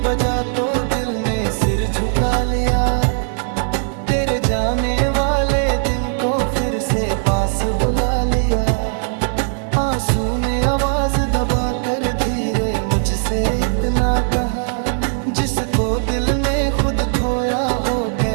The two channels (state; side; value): silent; left; 63 dB below the other